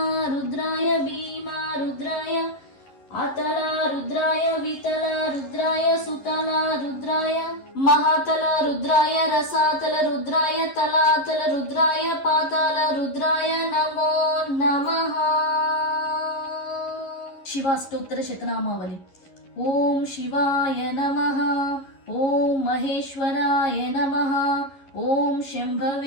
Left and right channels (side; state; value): right; late; 11 ms